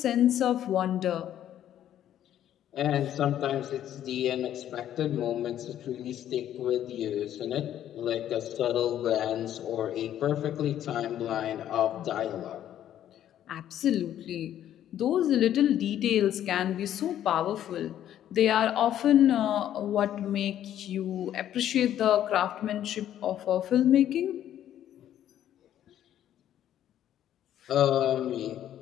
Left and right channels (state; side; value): quieter; right; 11.2 dB